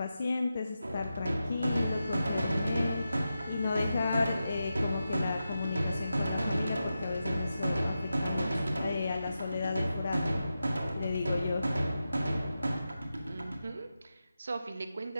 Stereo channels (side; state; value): both; inverted; correlation -0.90